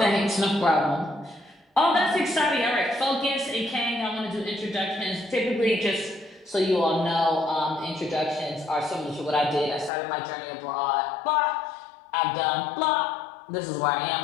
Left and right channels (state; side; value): drops out; right; at 9.9 s